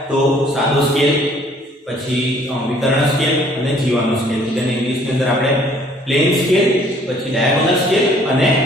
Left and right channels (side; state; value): both; normal; correlation 0.59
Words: તો સાદો સ્કેલ, પછી વિકર્ણ સ્કેલ અને જીવાનો સ્કેલ। જેને ઇંગ્લિશની અંદર આપણે પ્લેન સ્કેલ, પછી ડાયાગોનલ સ્કેલ અને